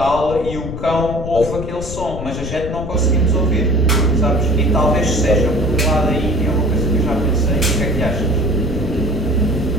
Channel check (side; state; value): left; noise; rumble, 8 dB below the sound